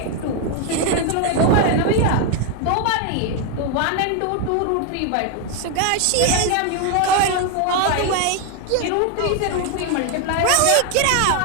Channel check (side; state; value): both; different; correlation 0.01